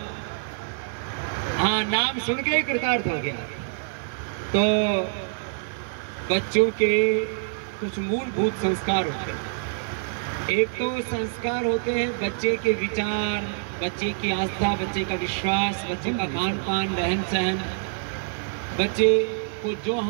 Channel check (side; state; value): left; silent; digital silence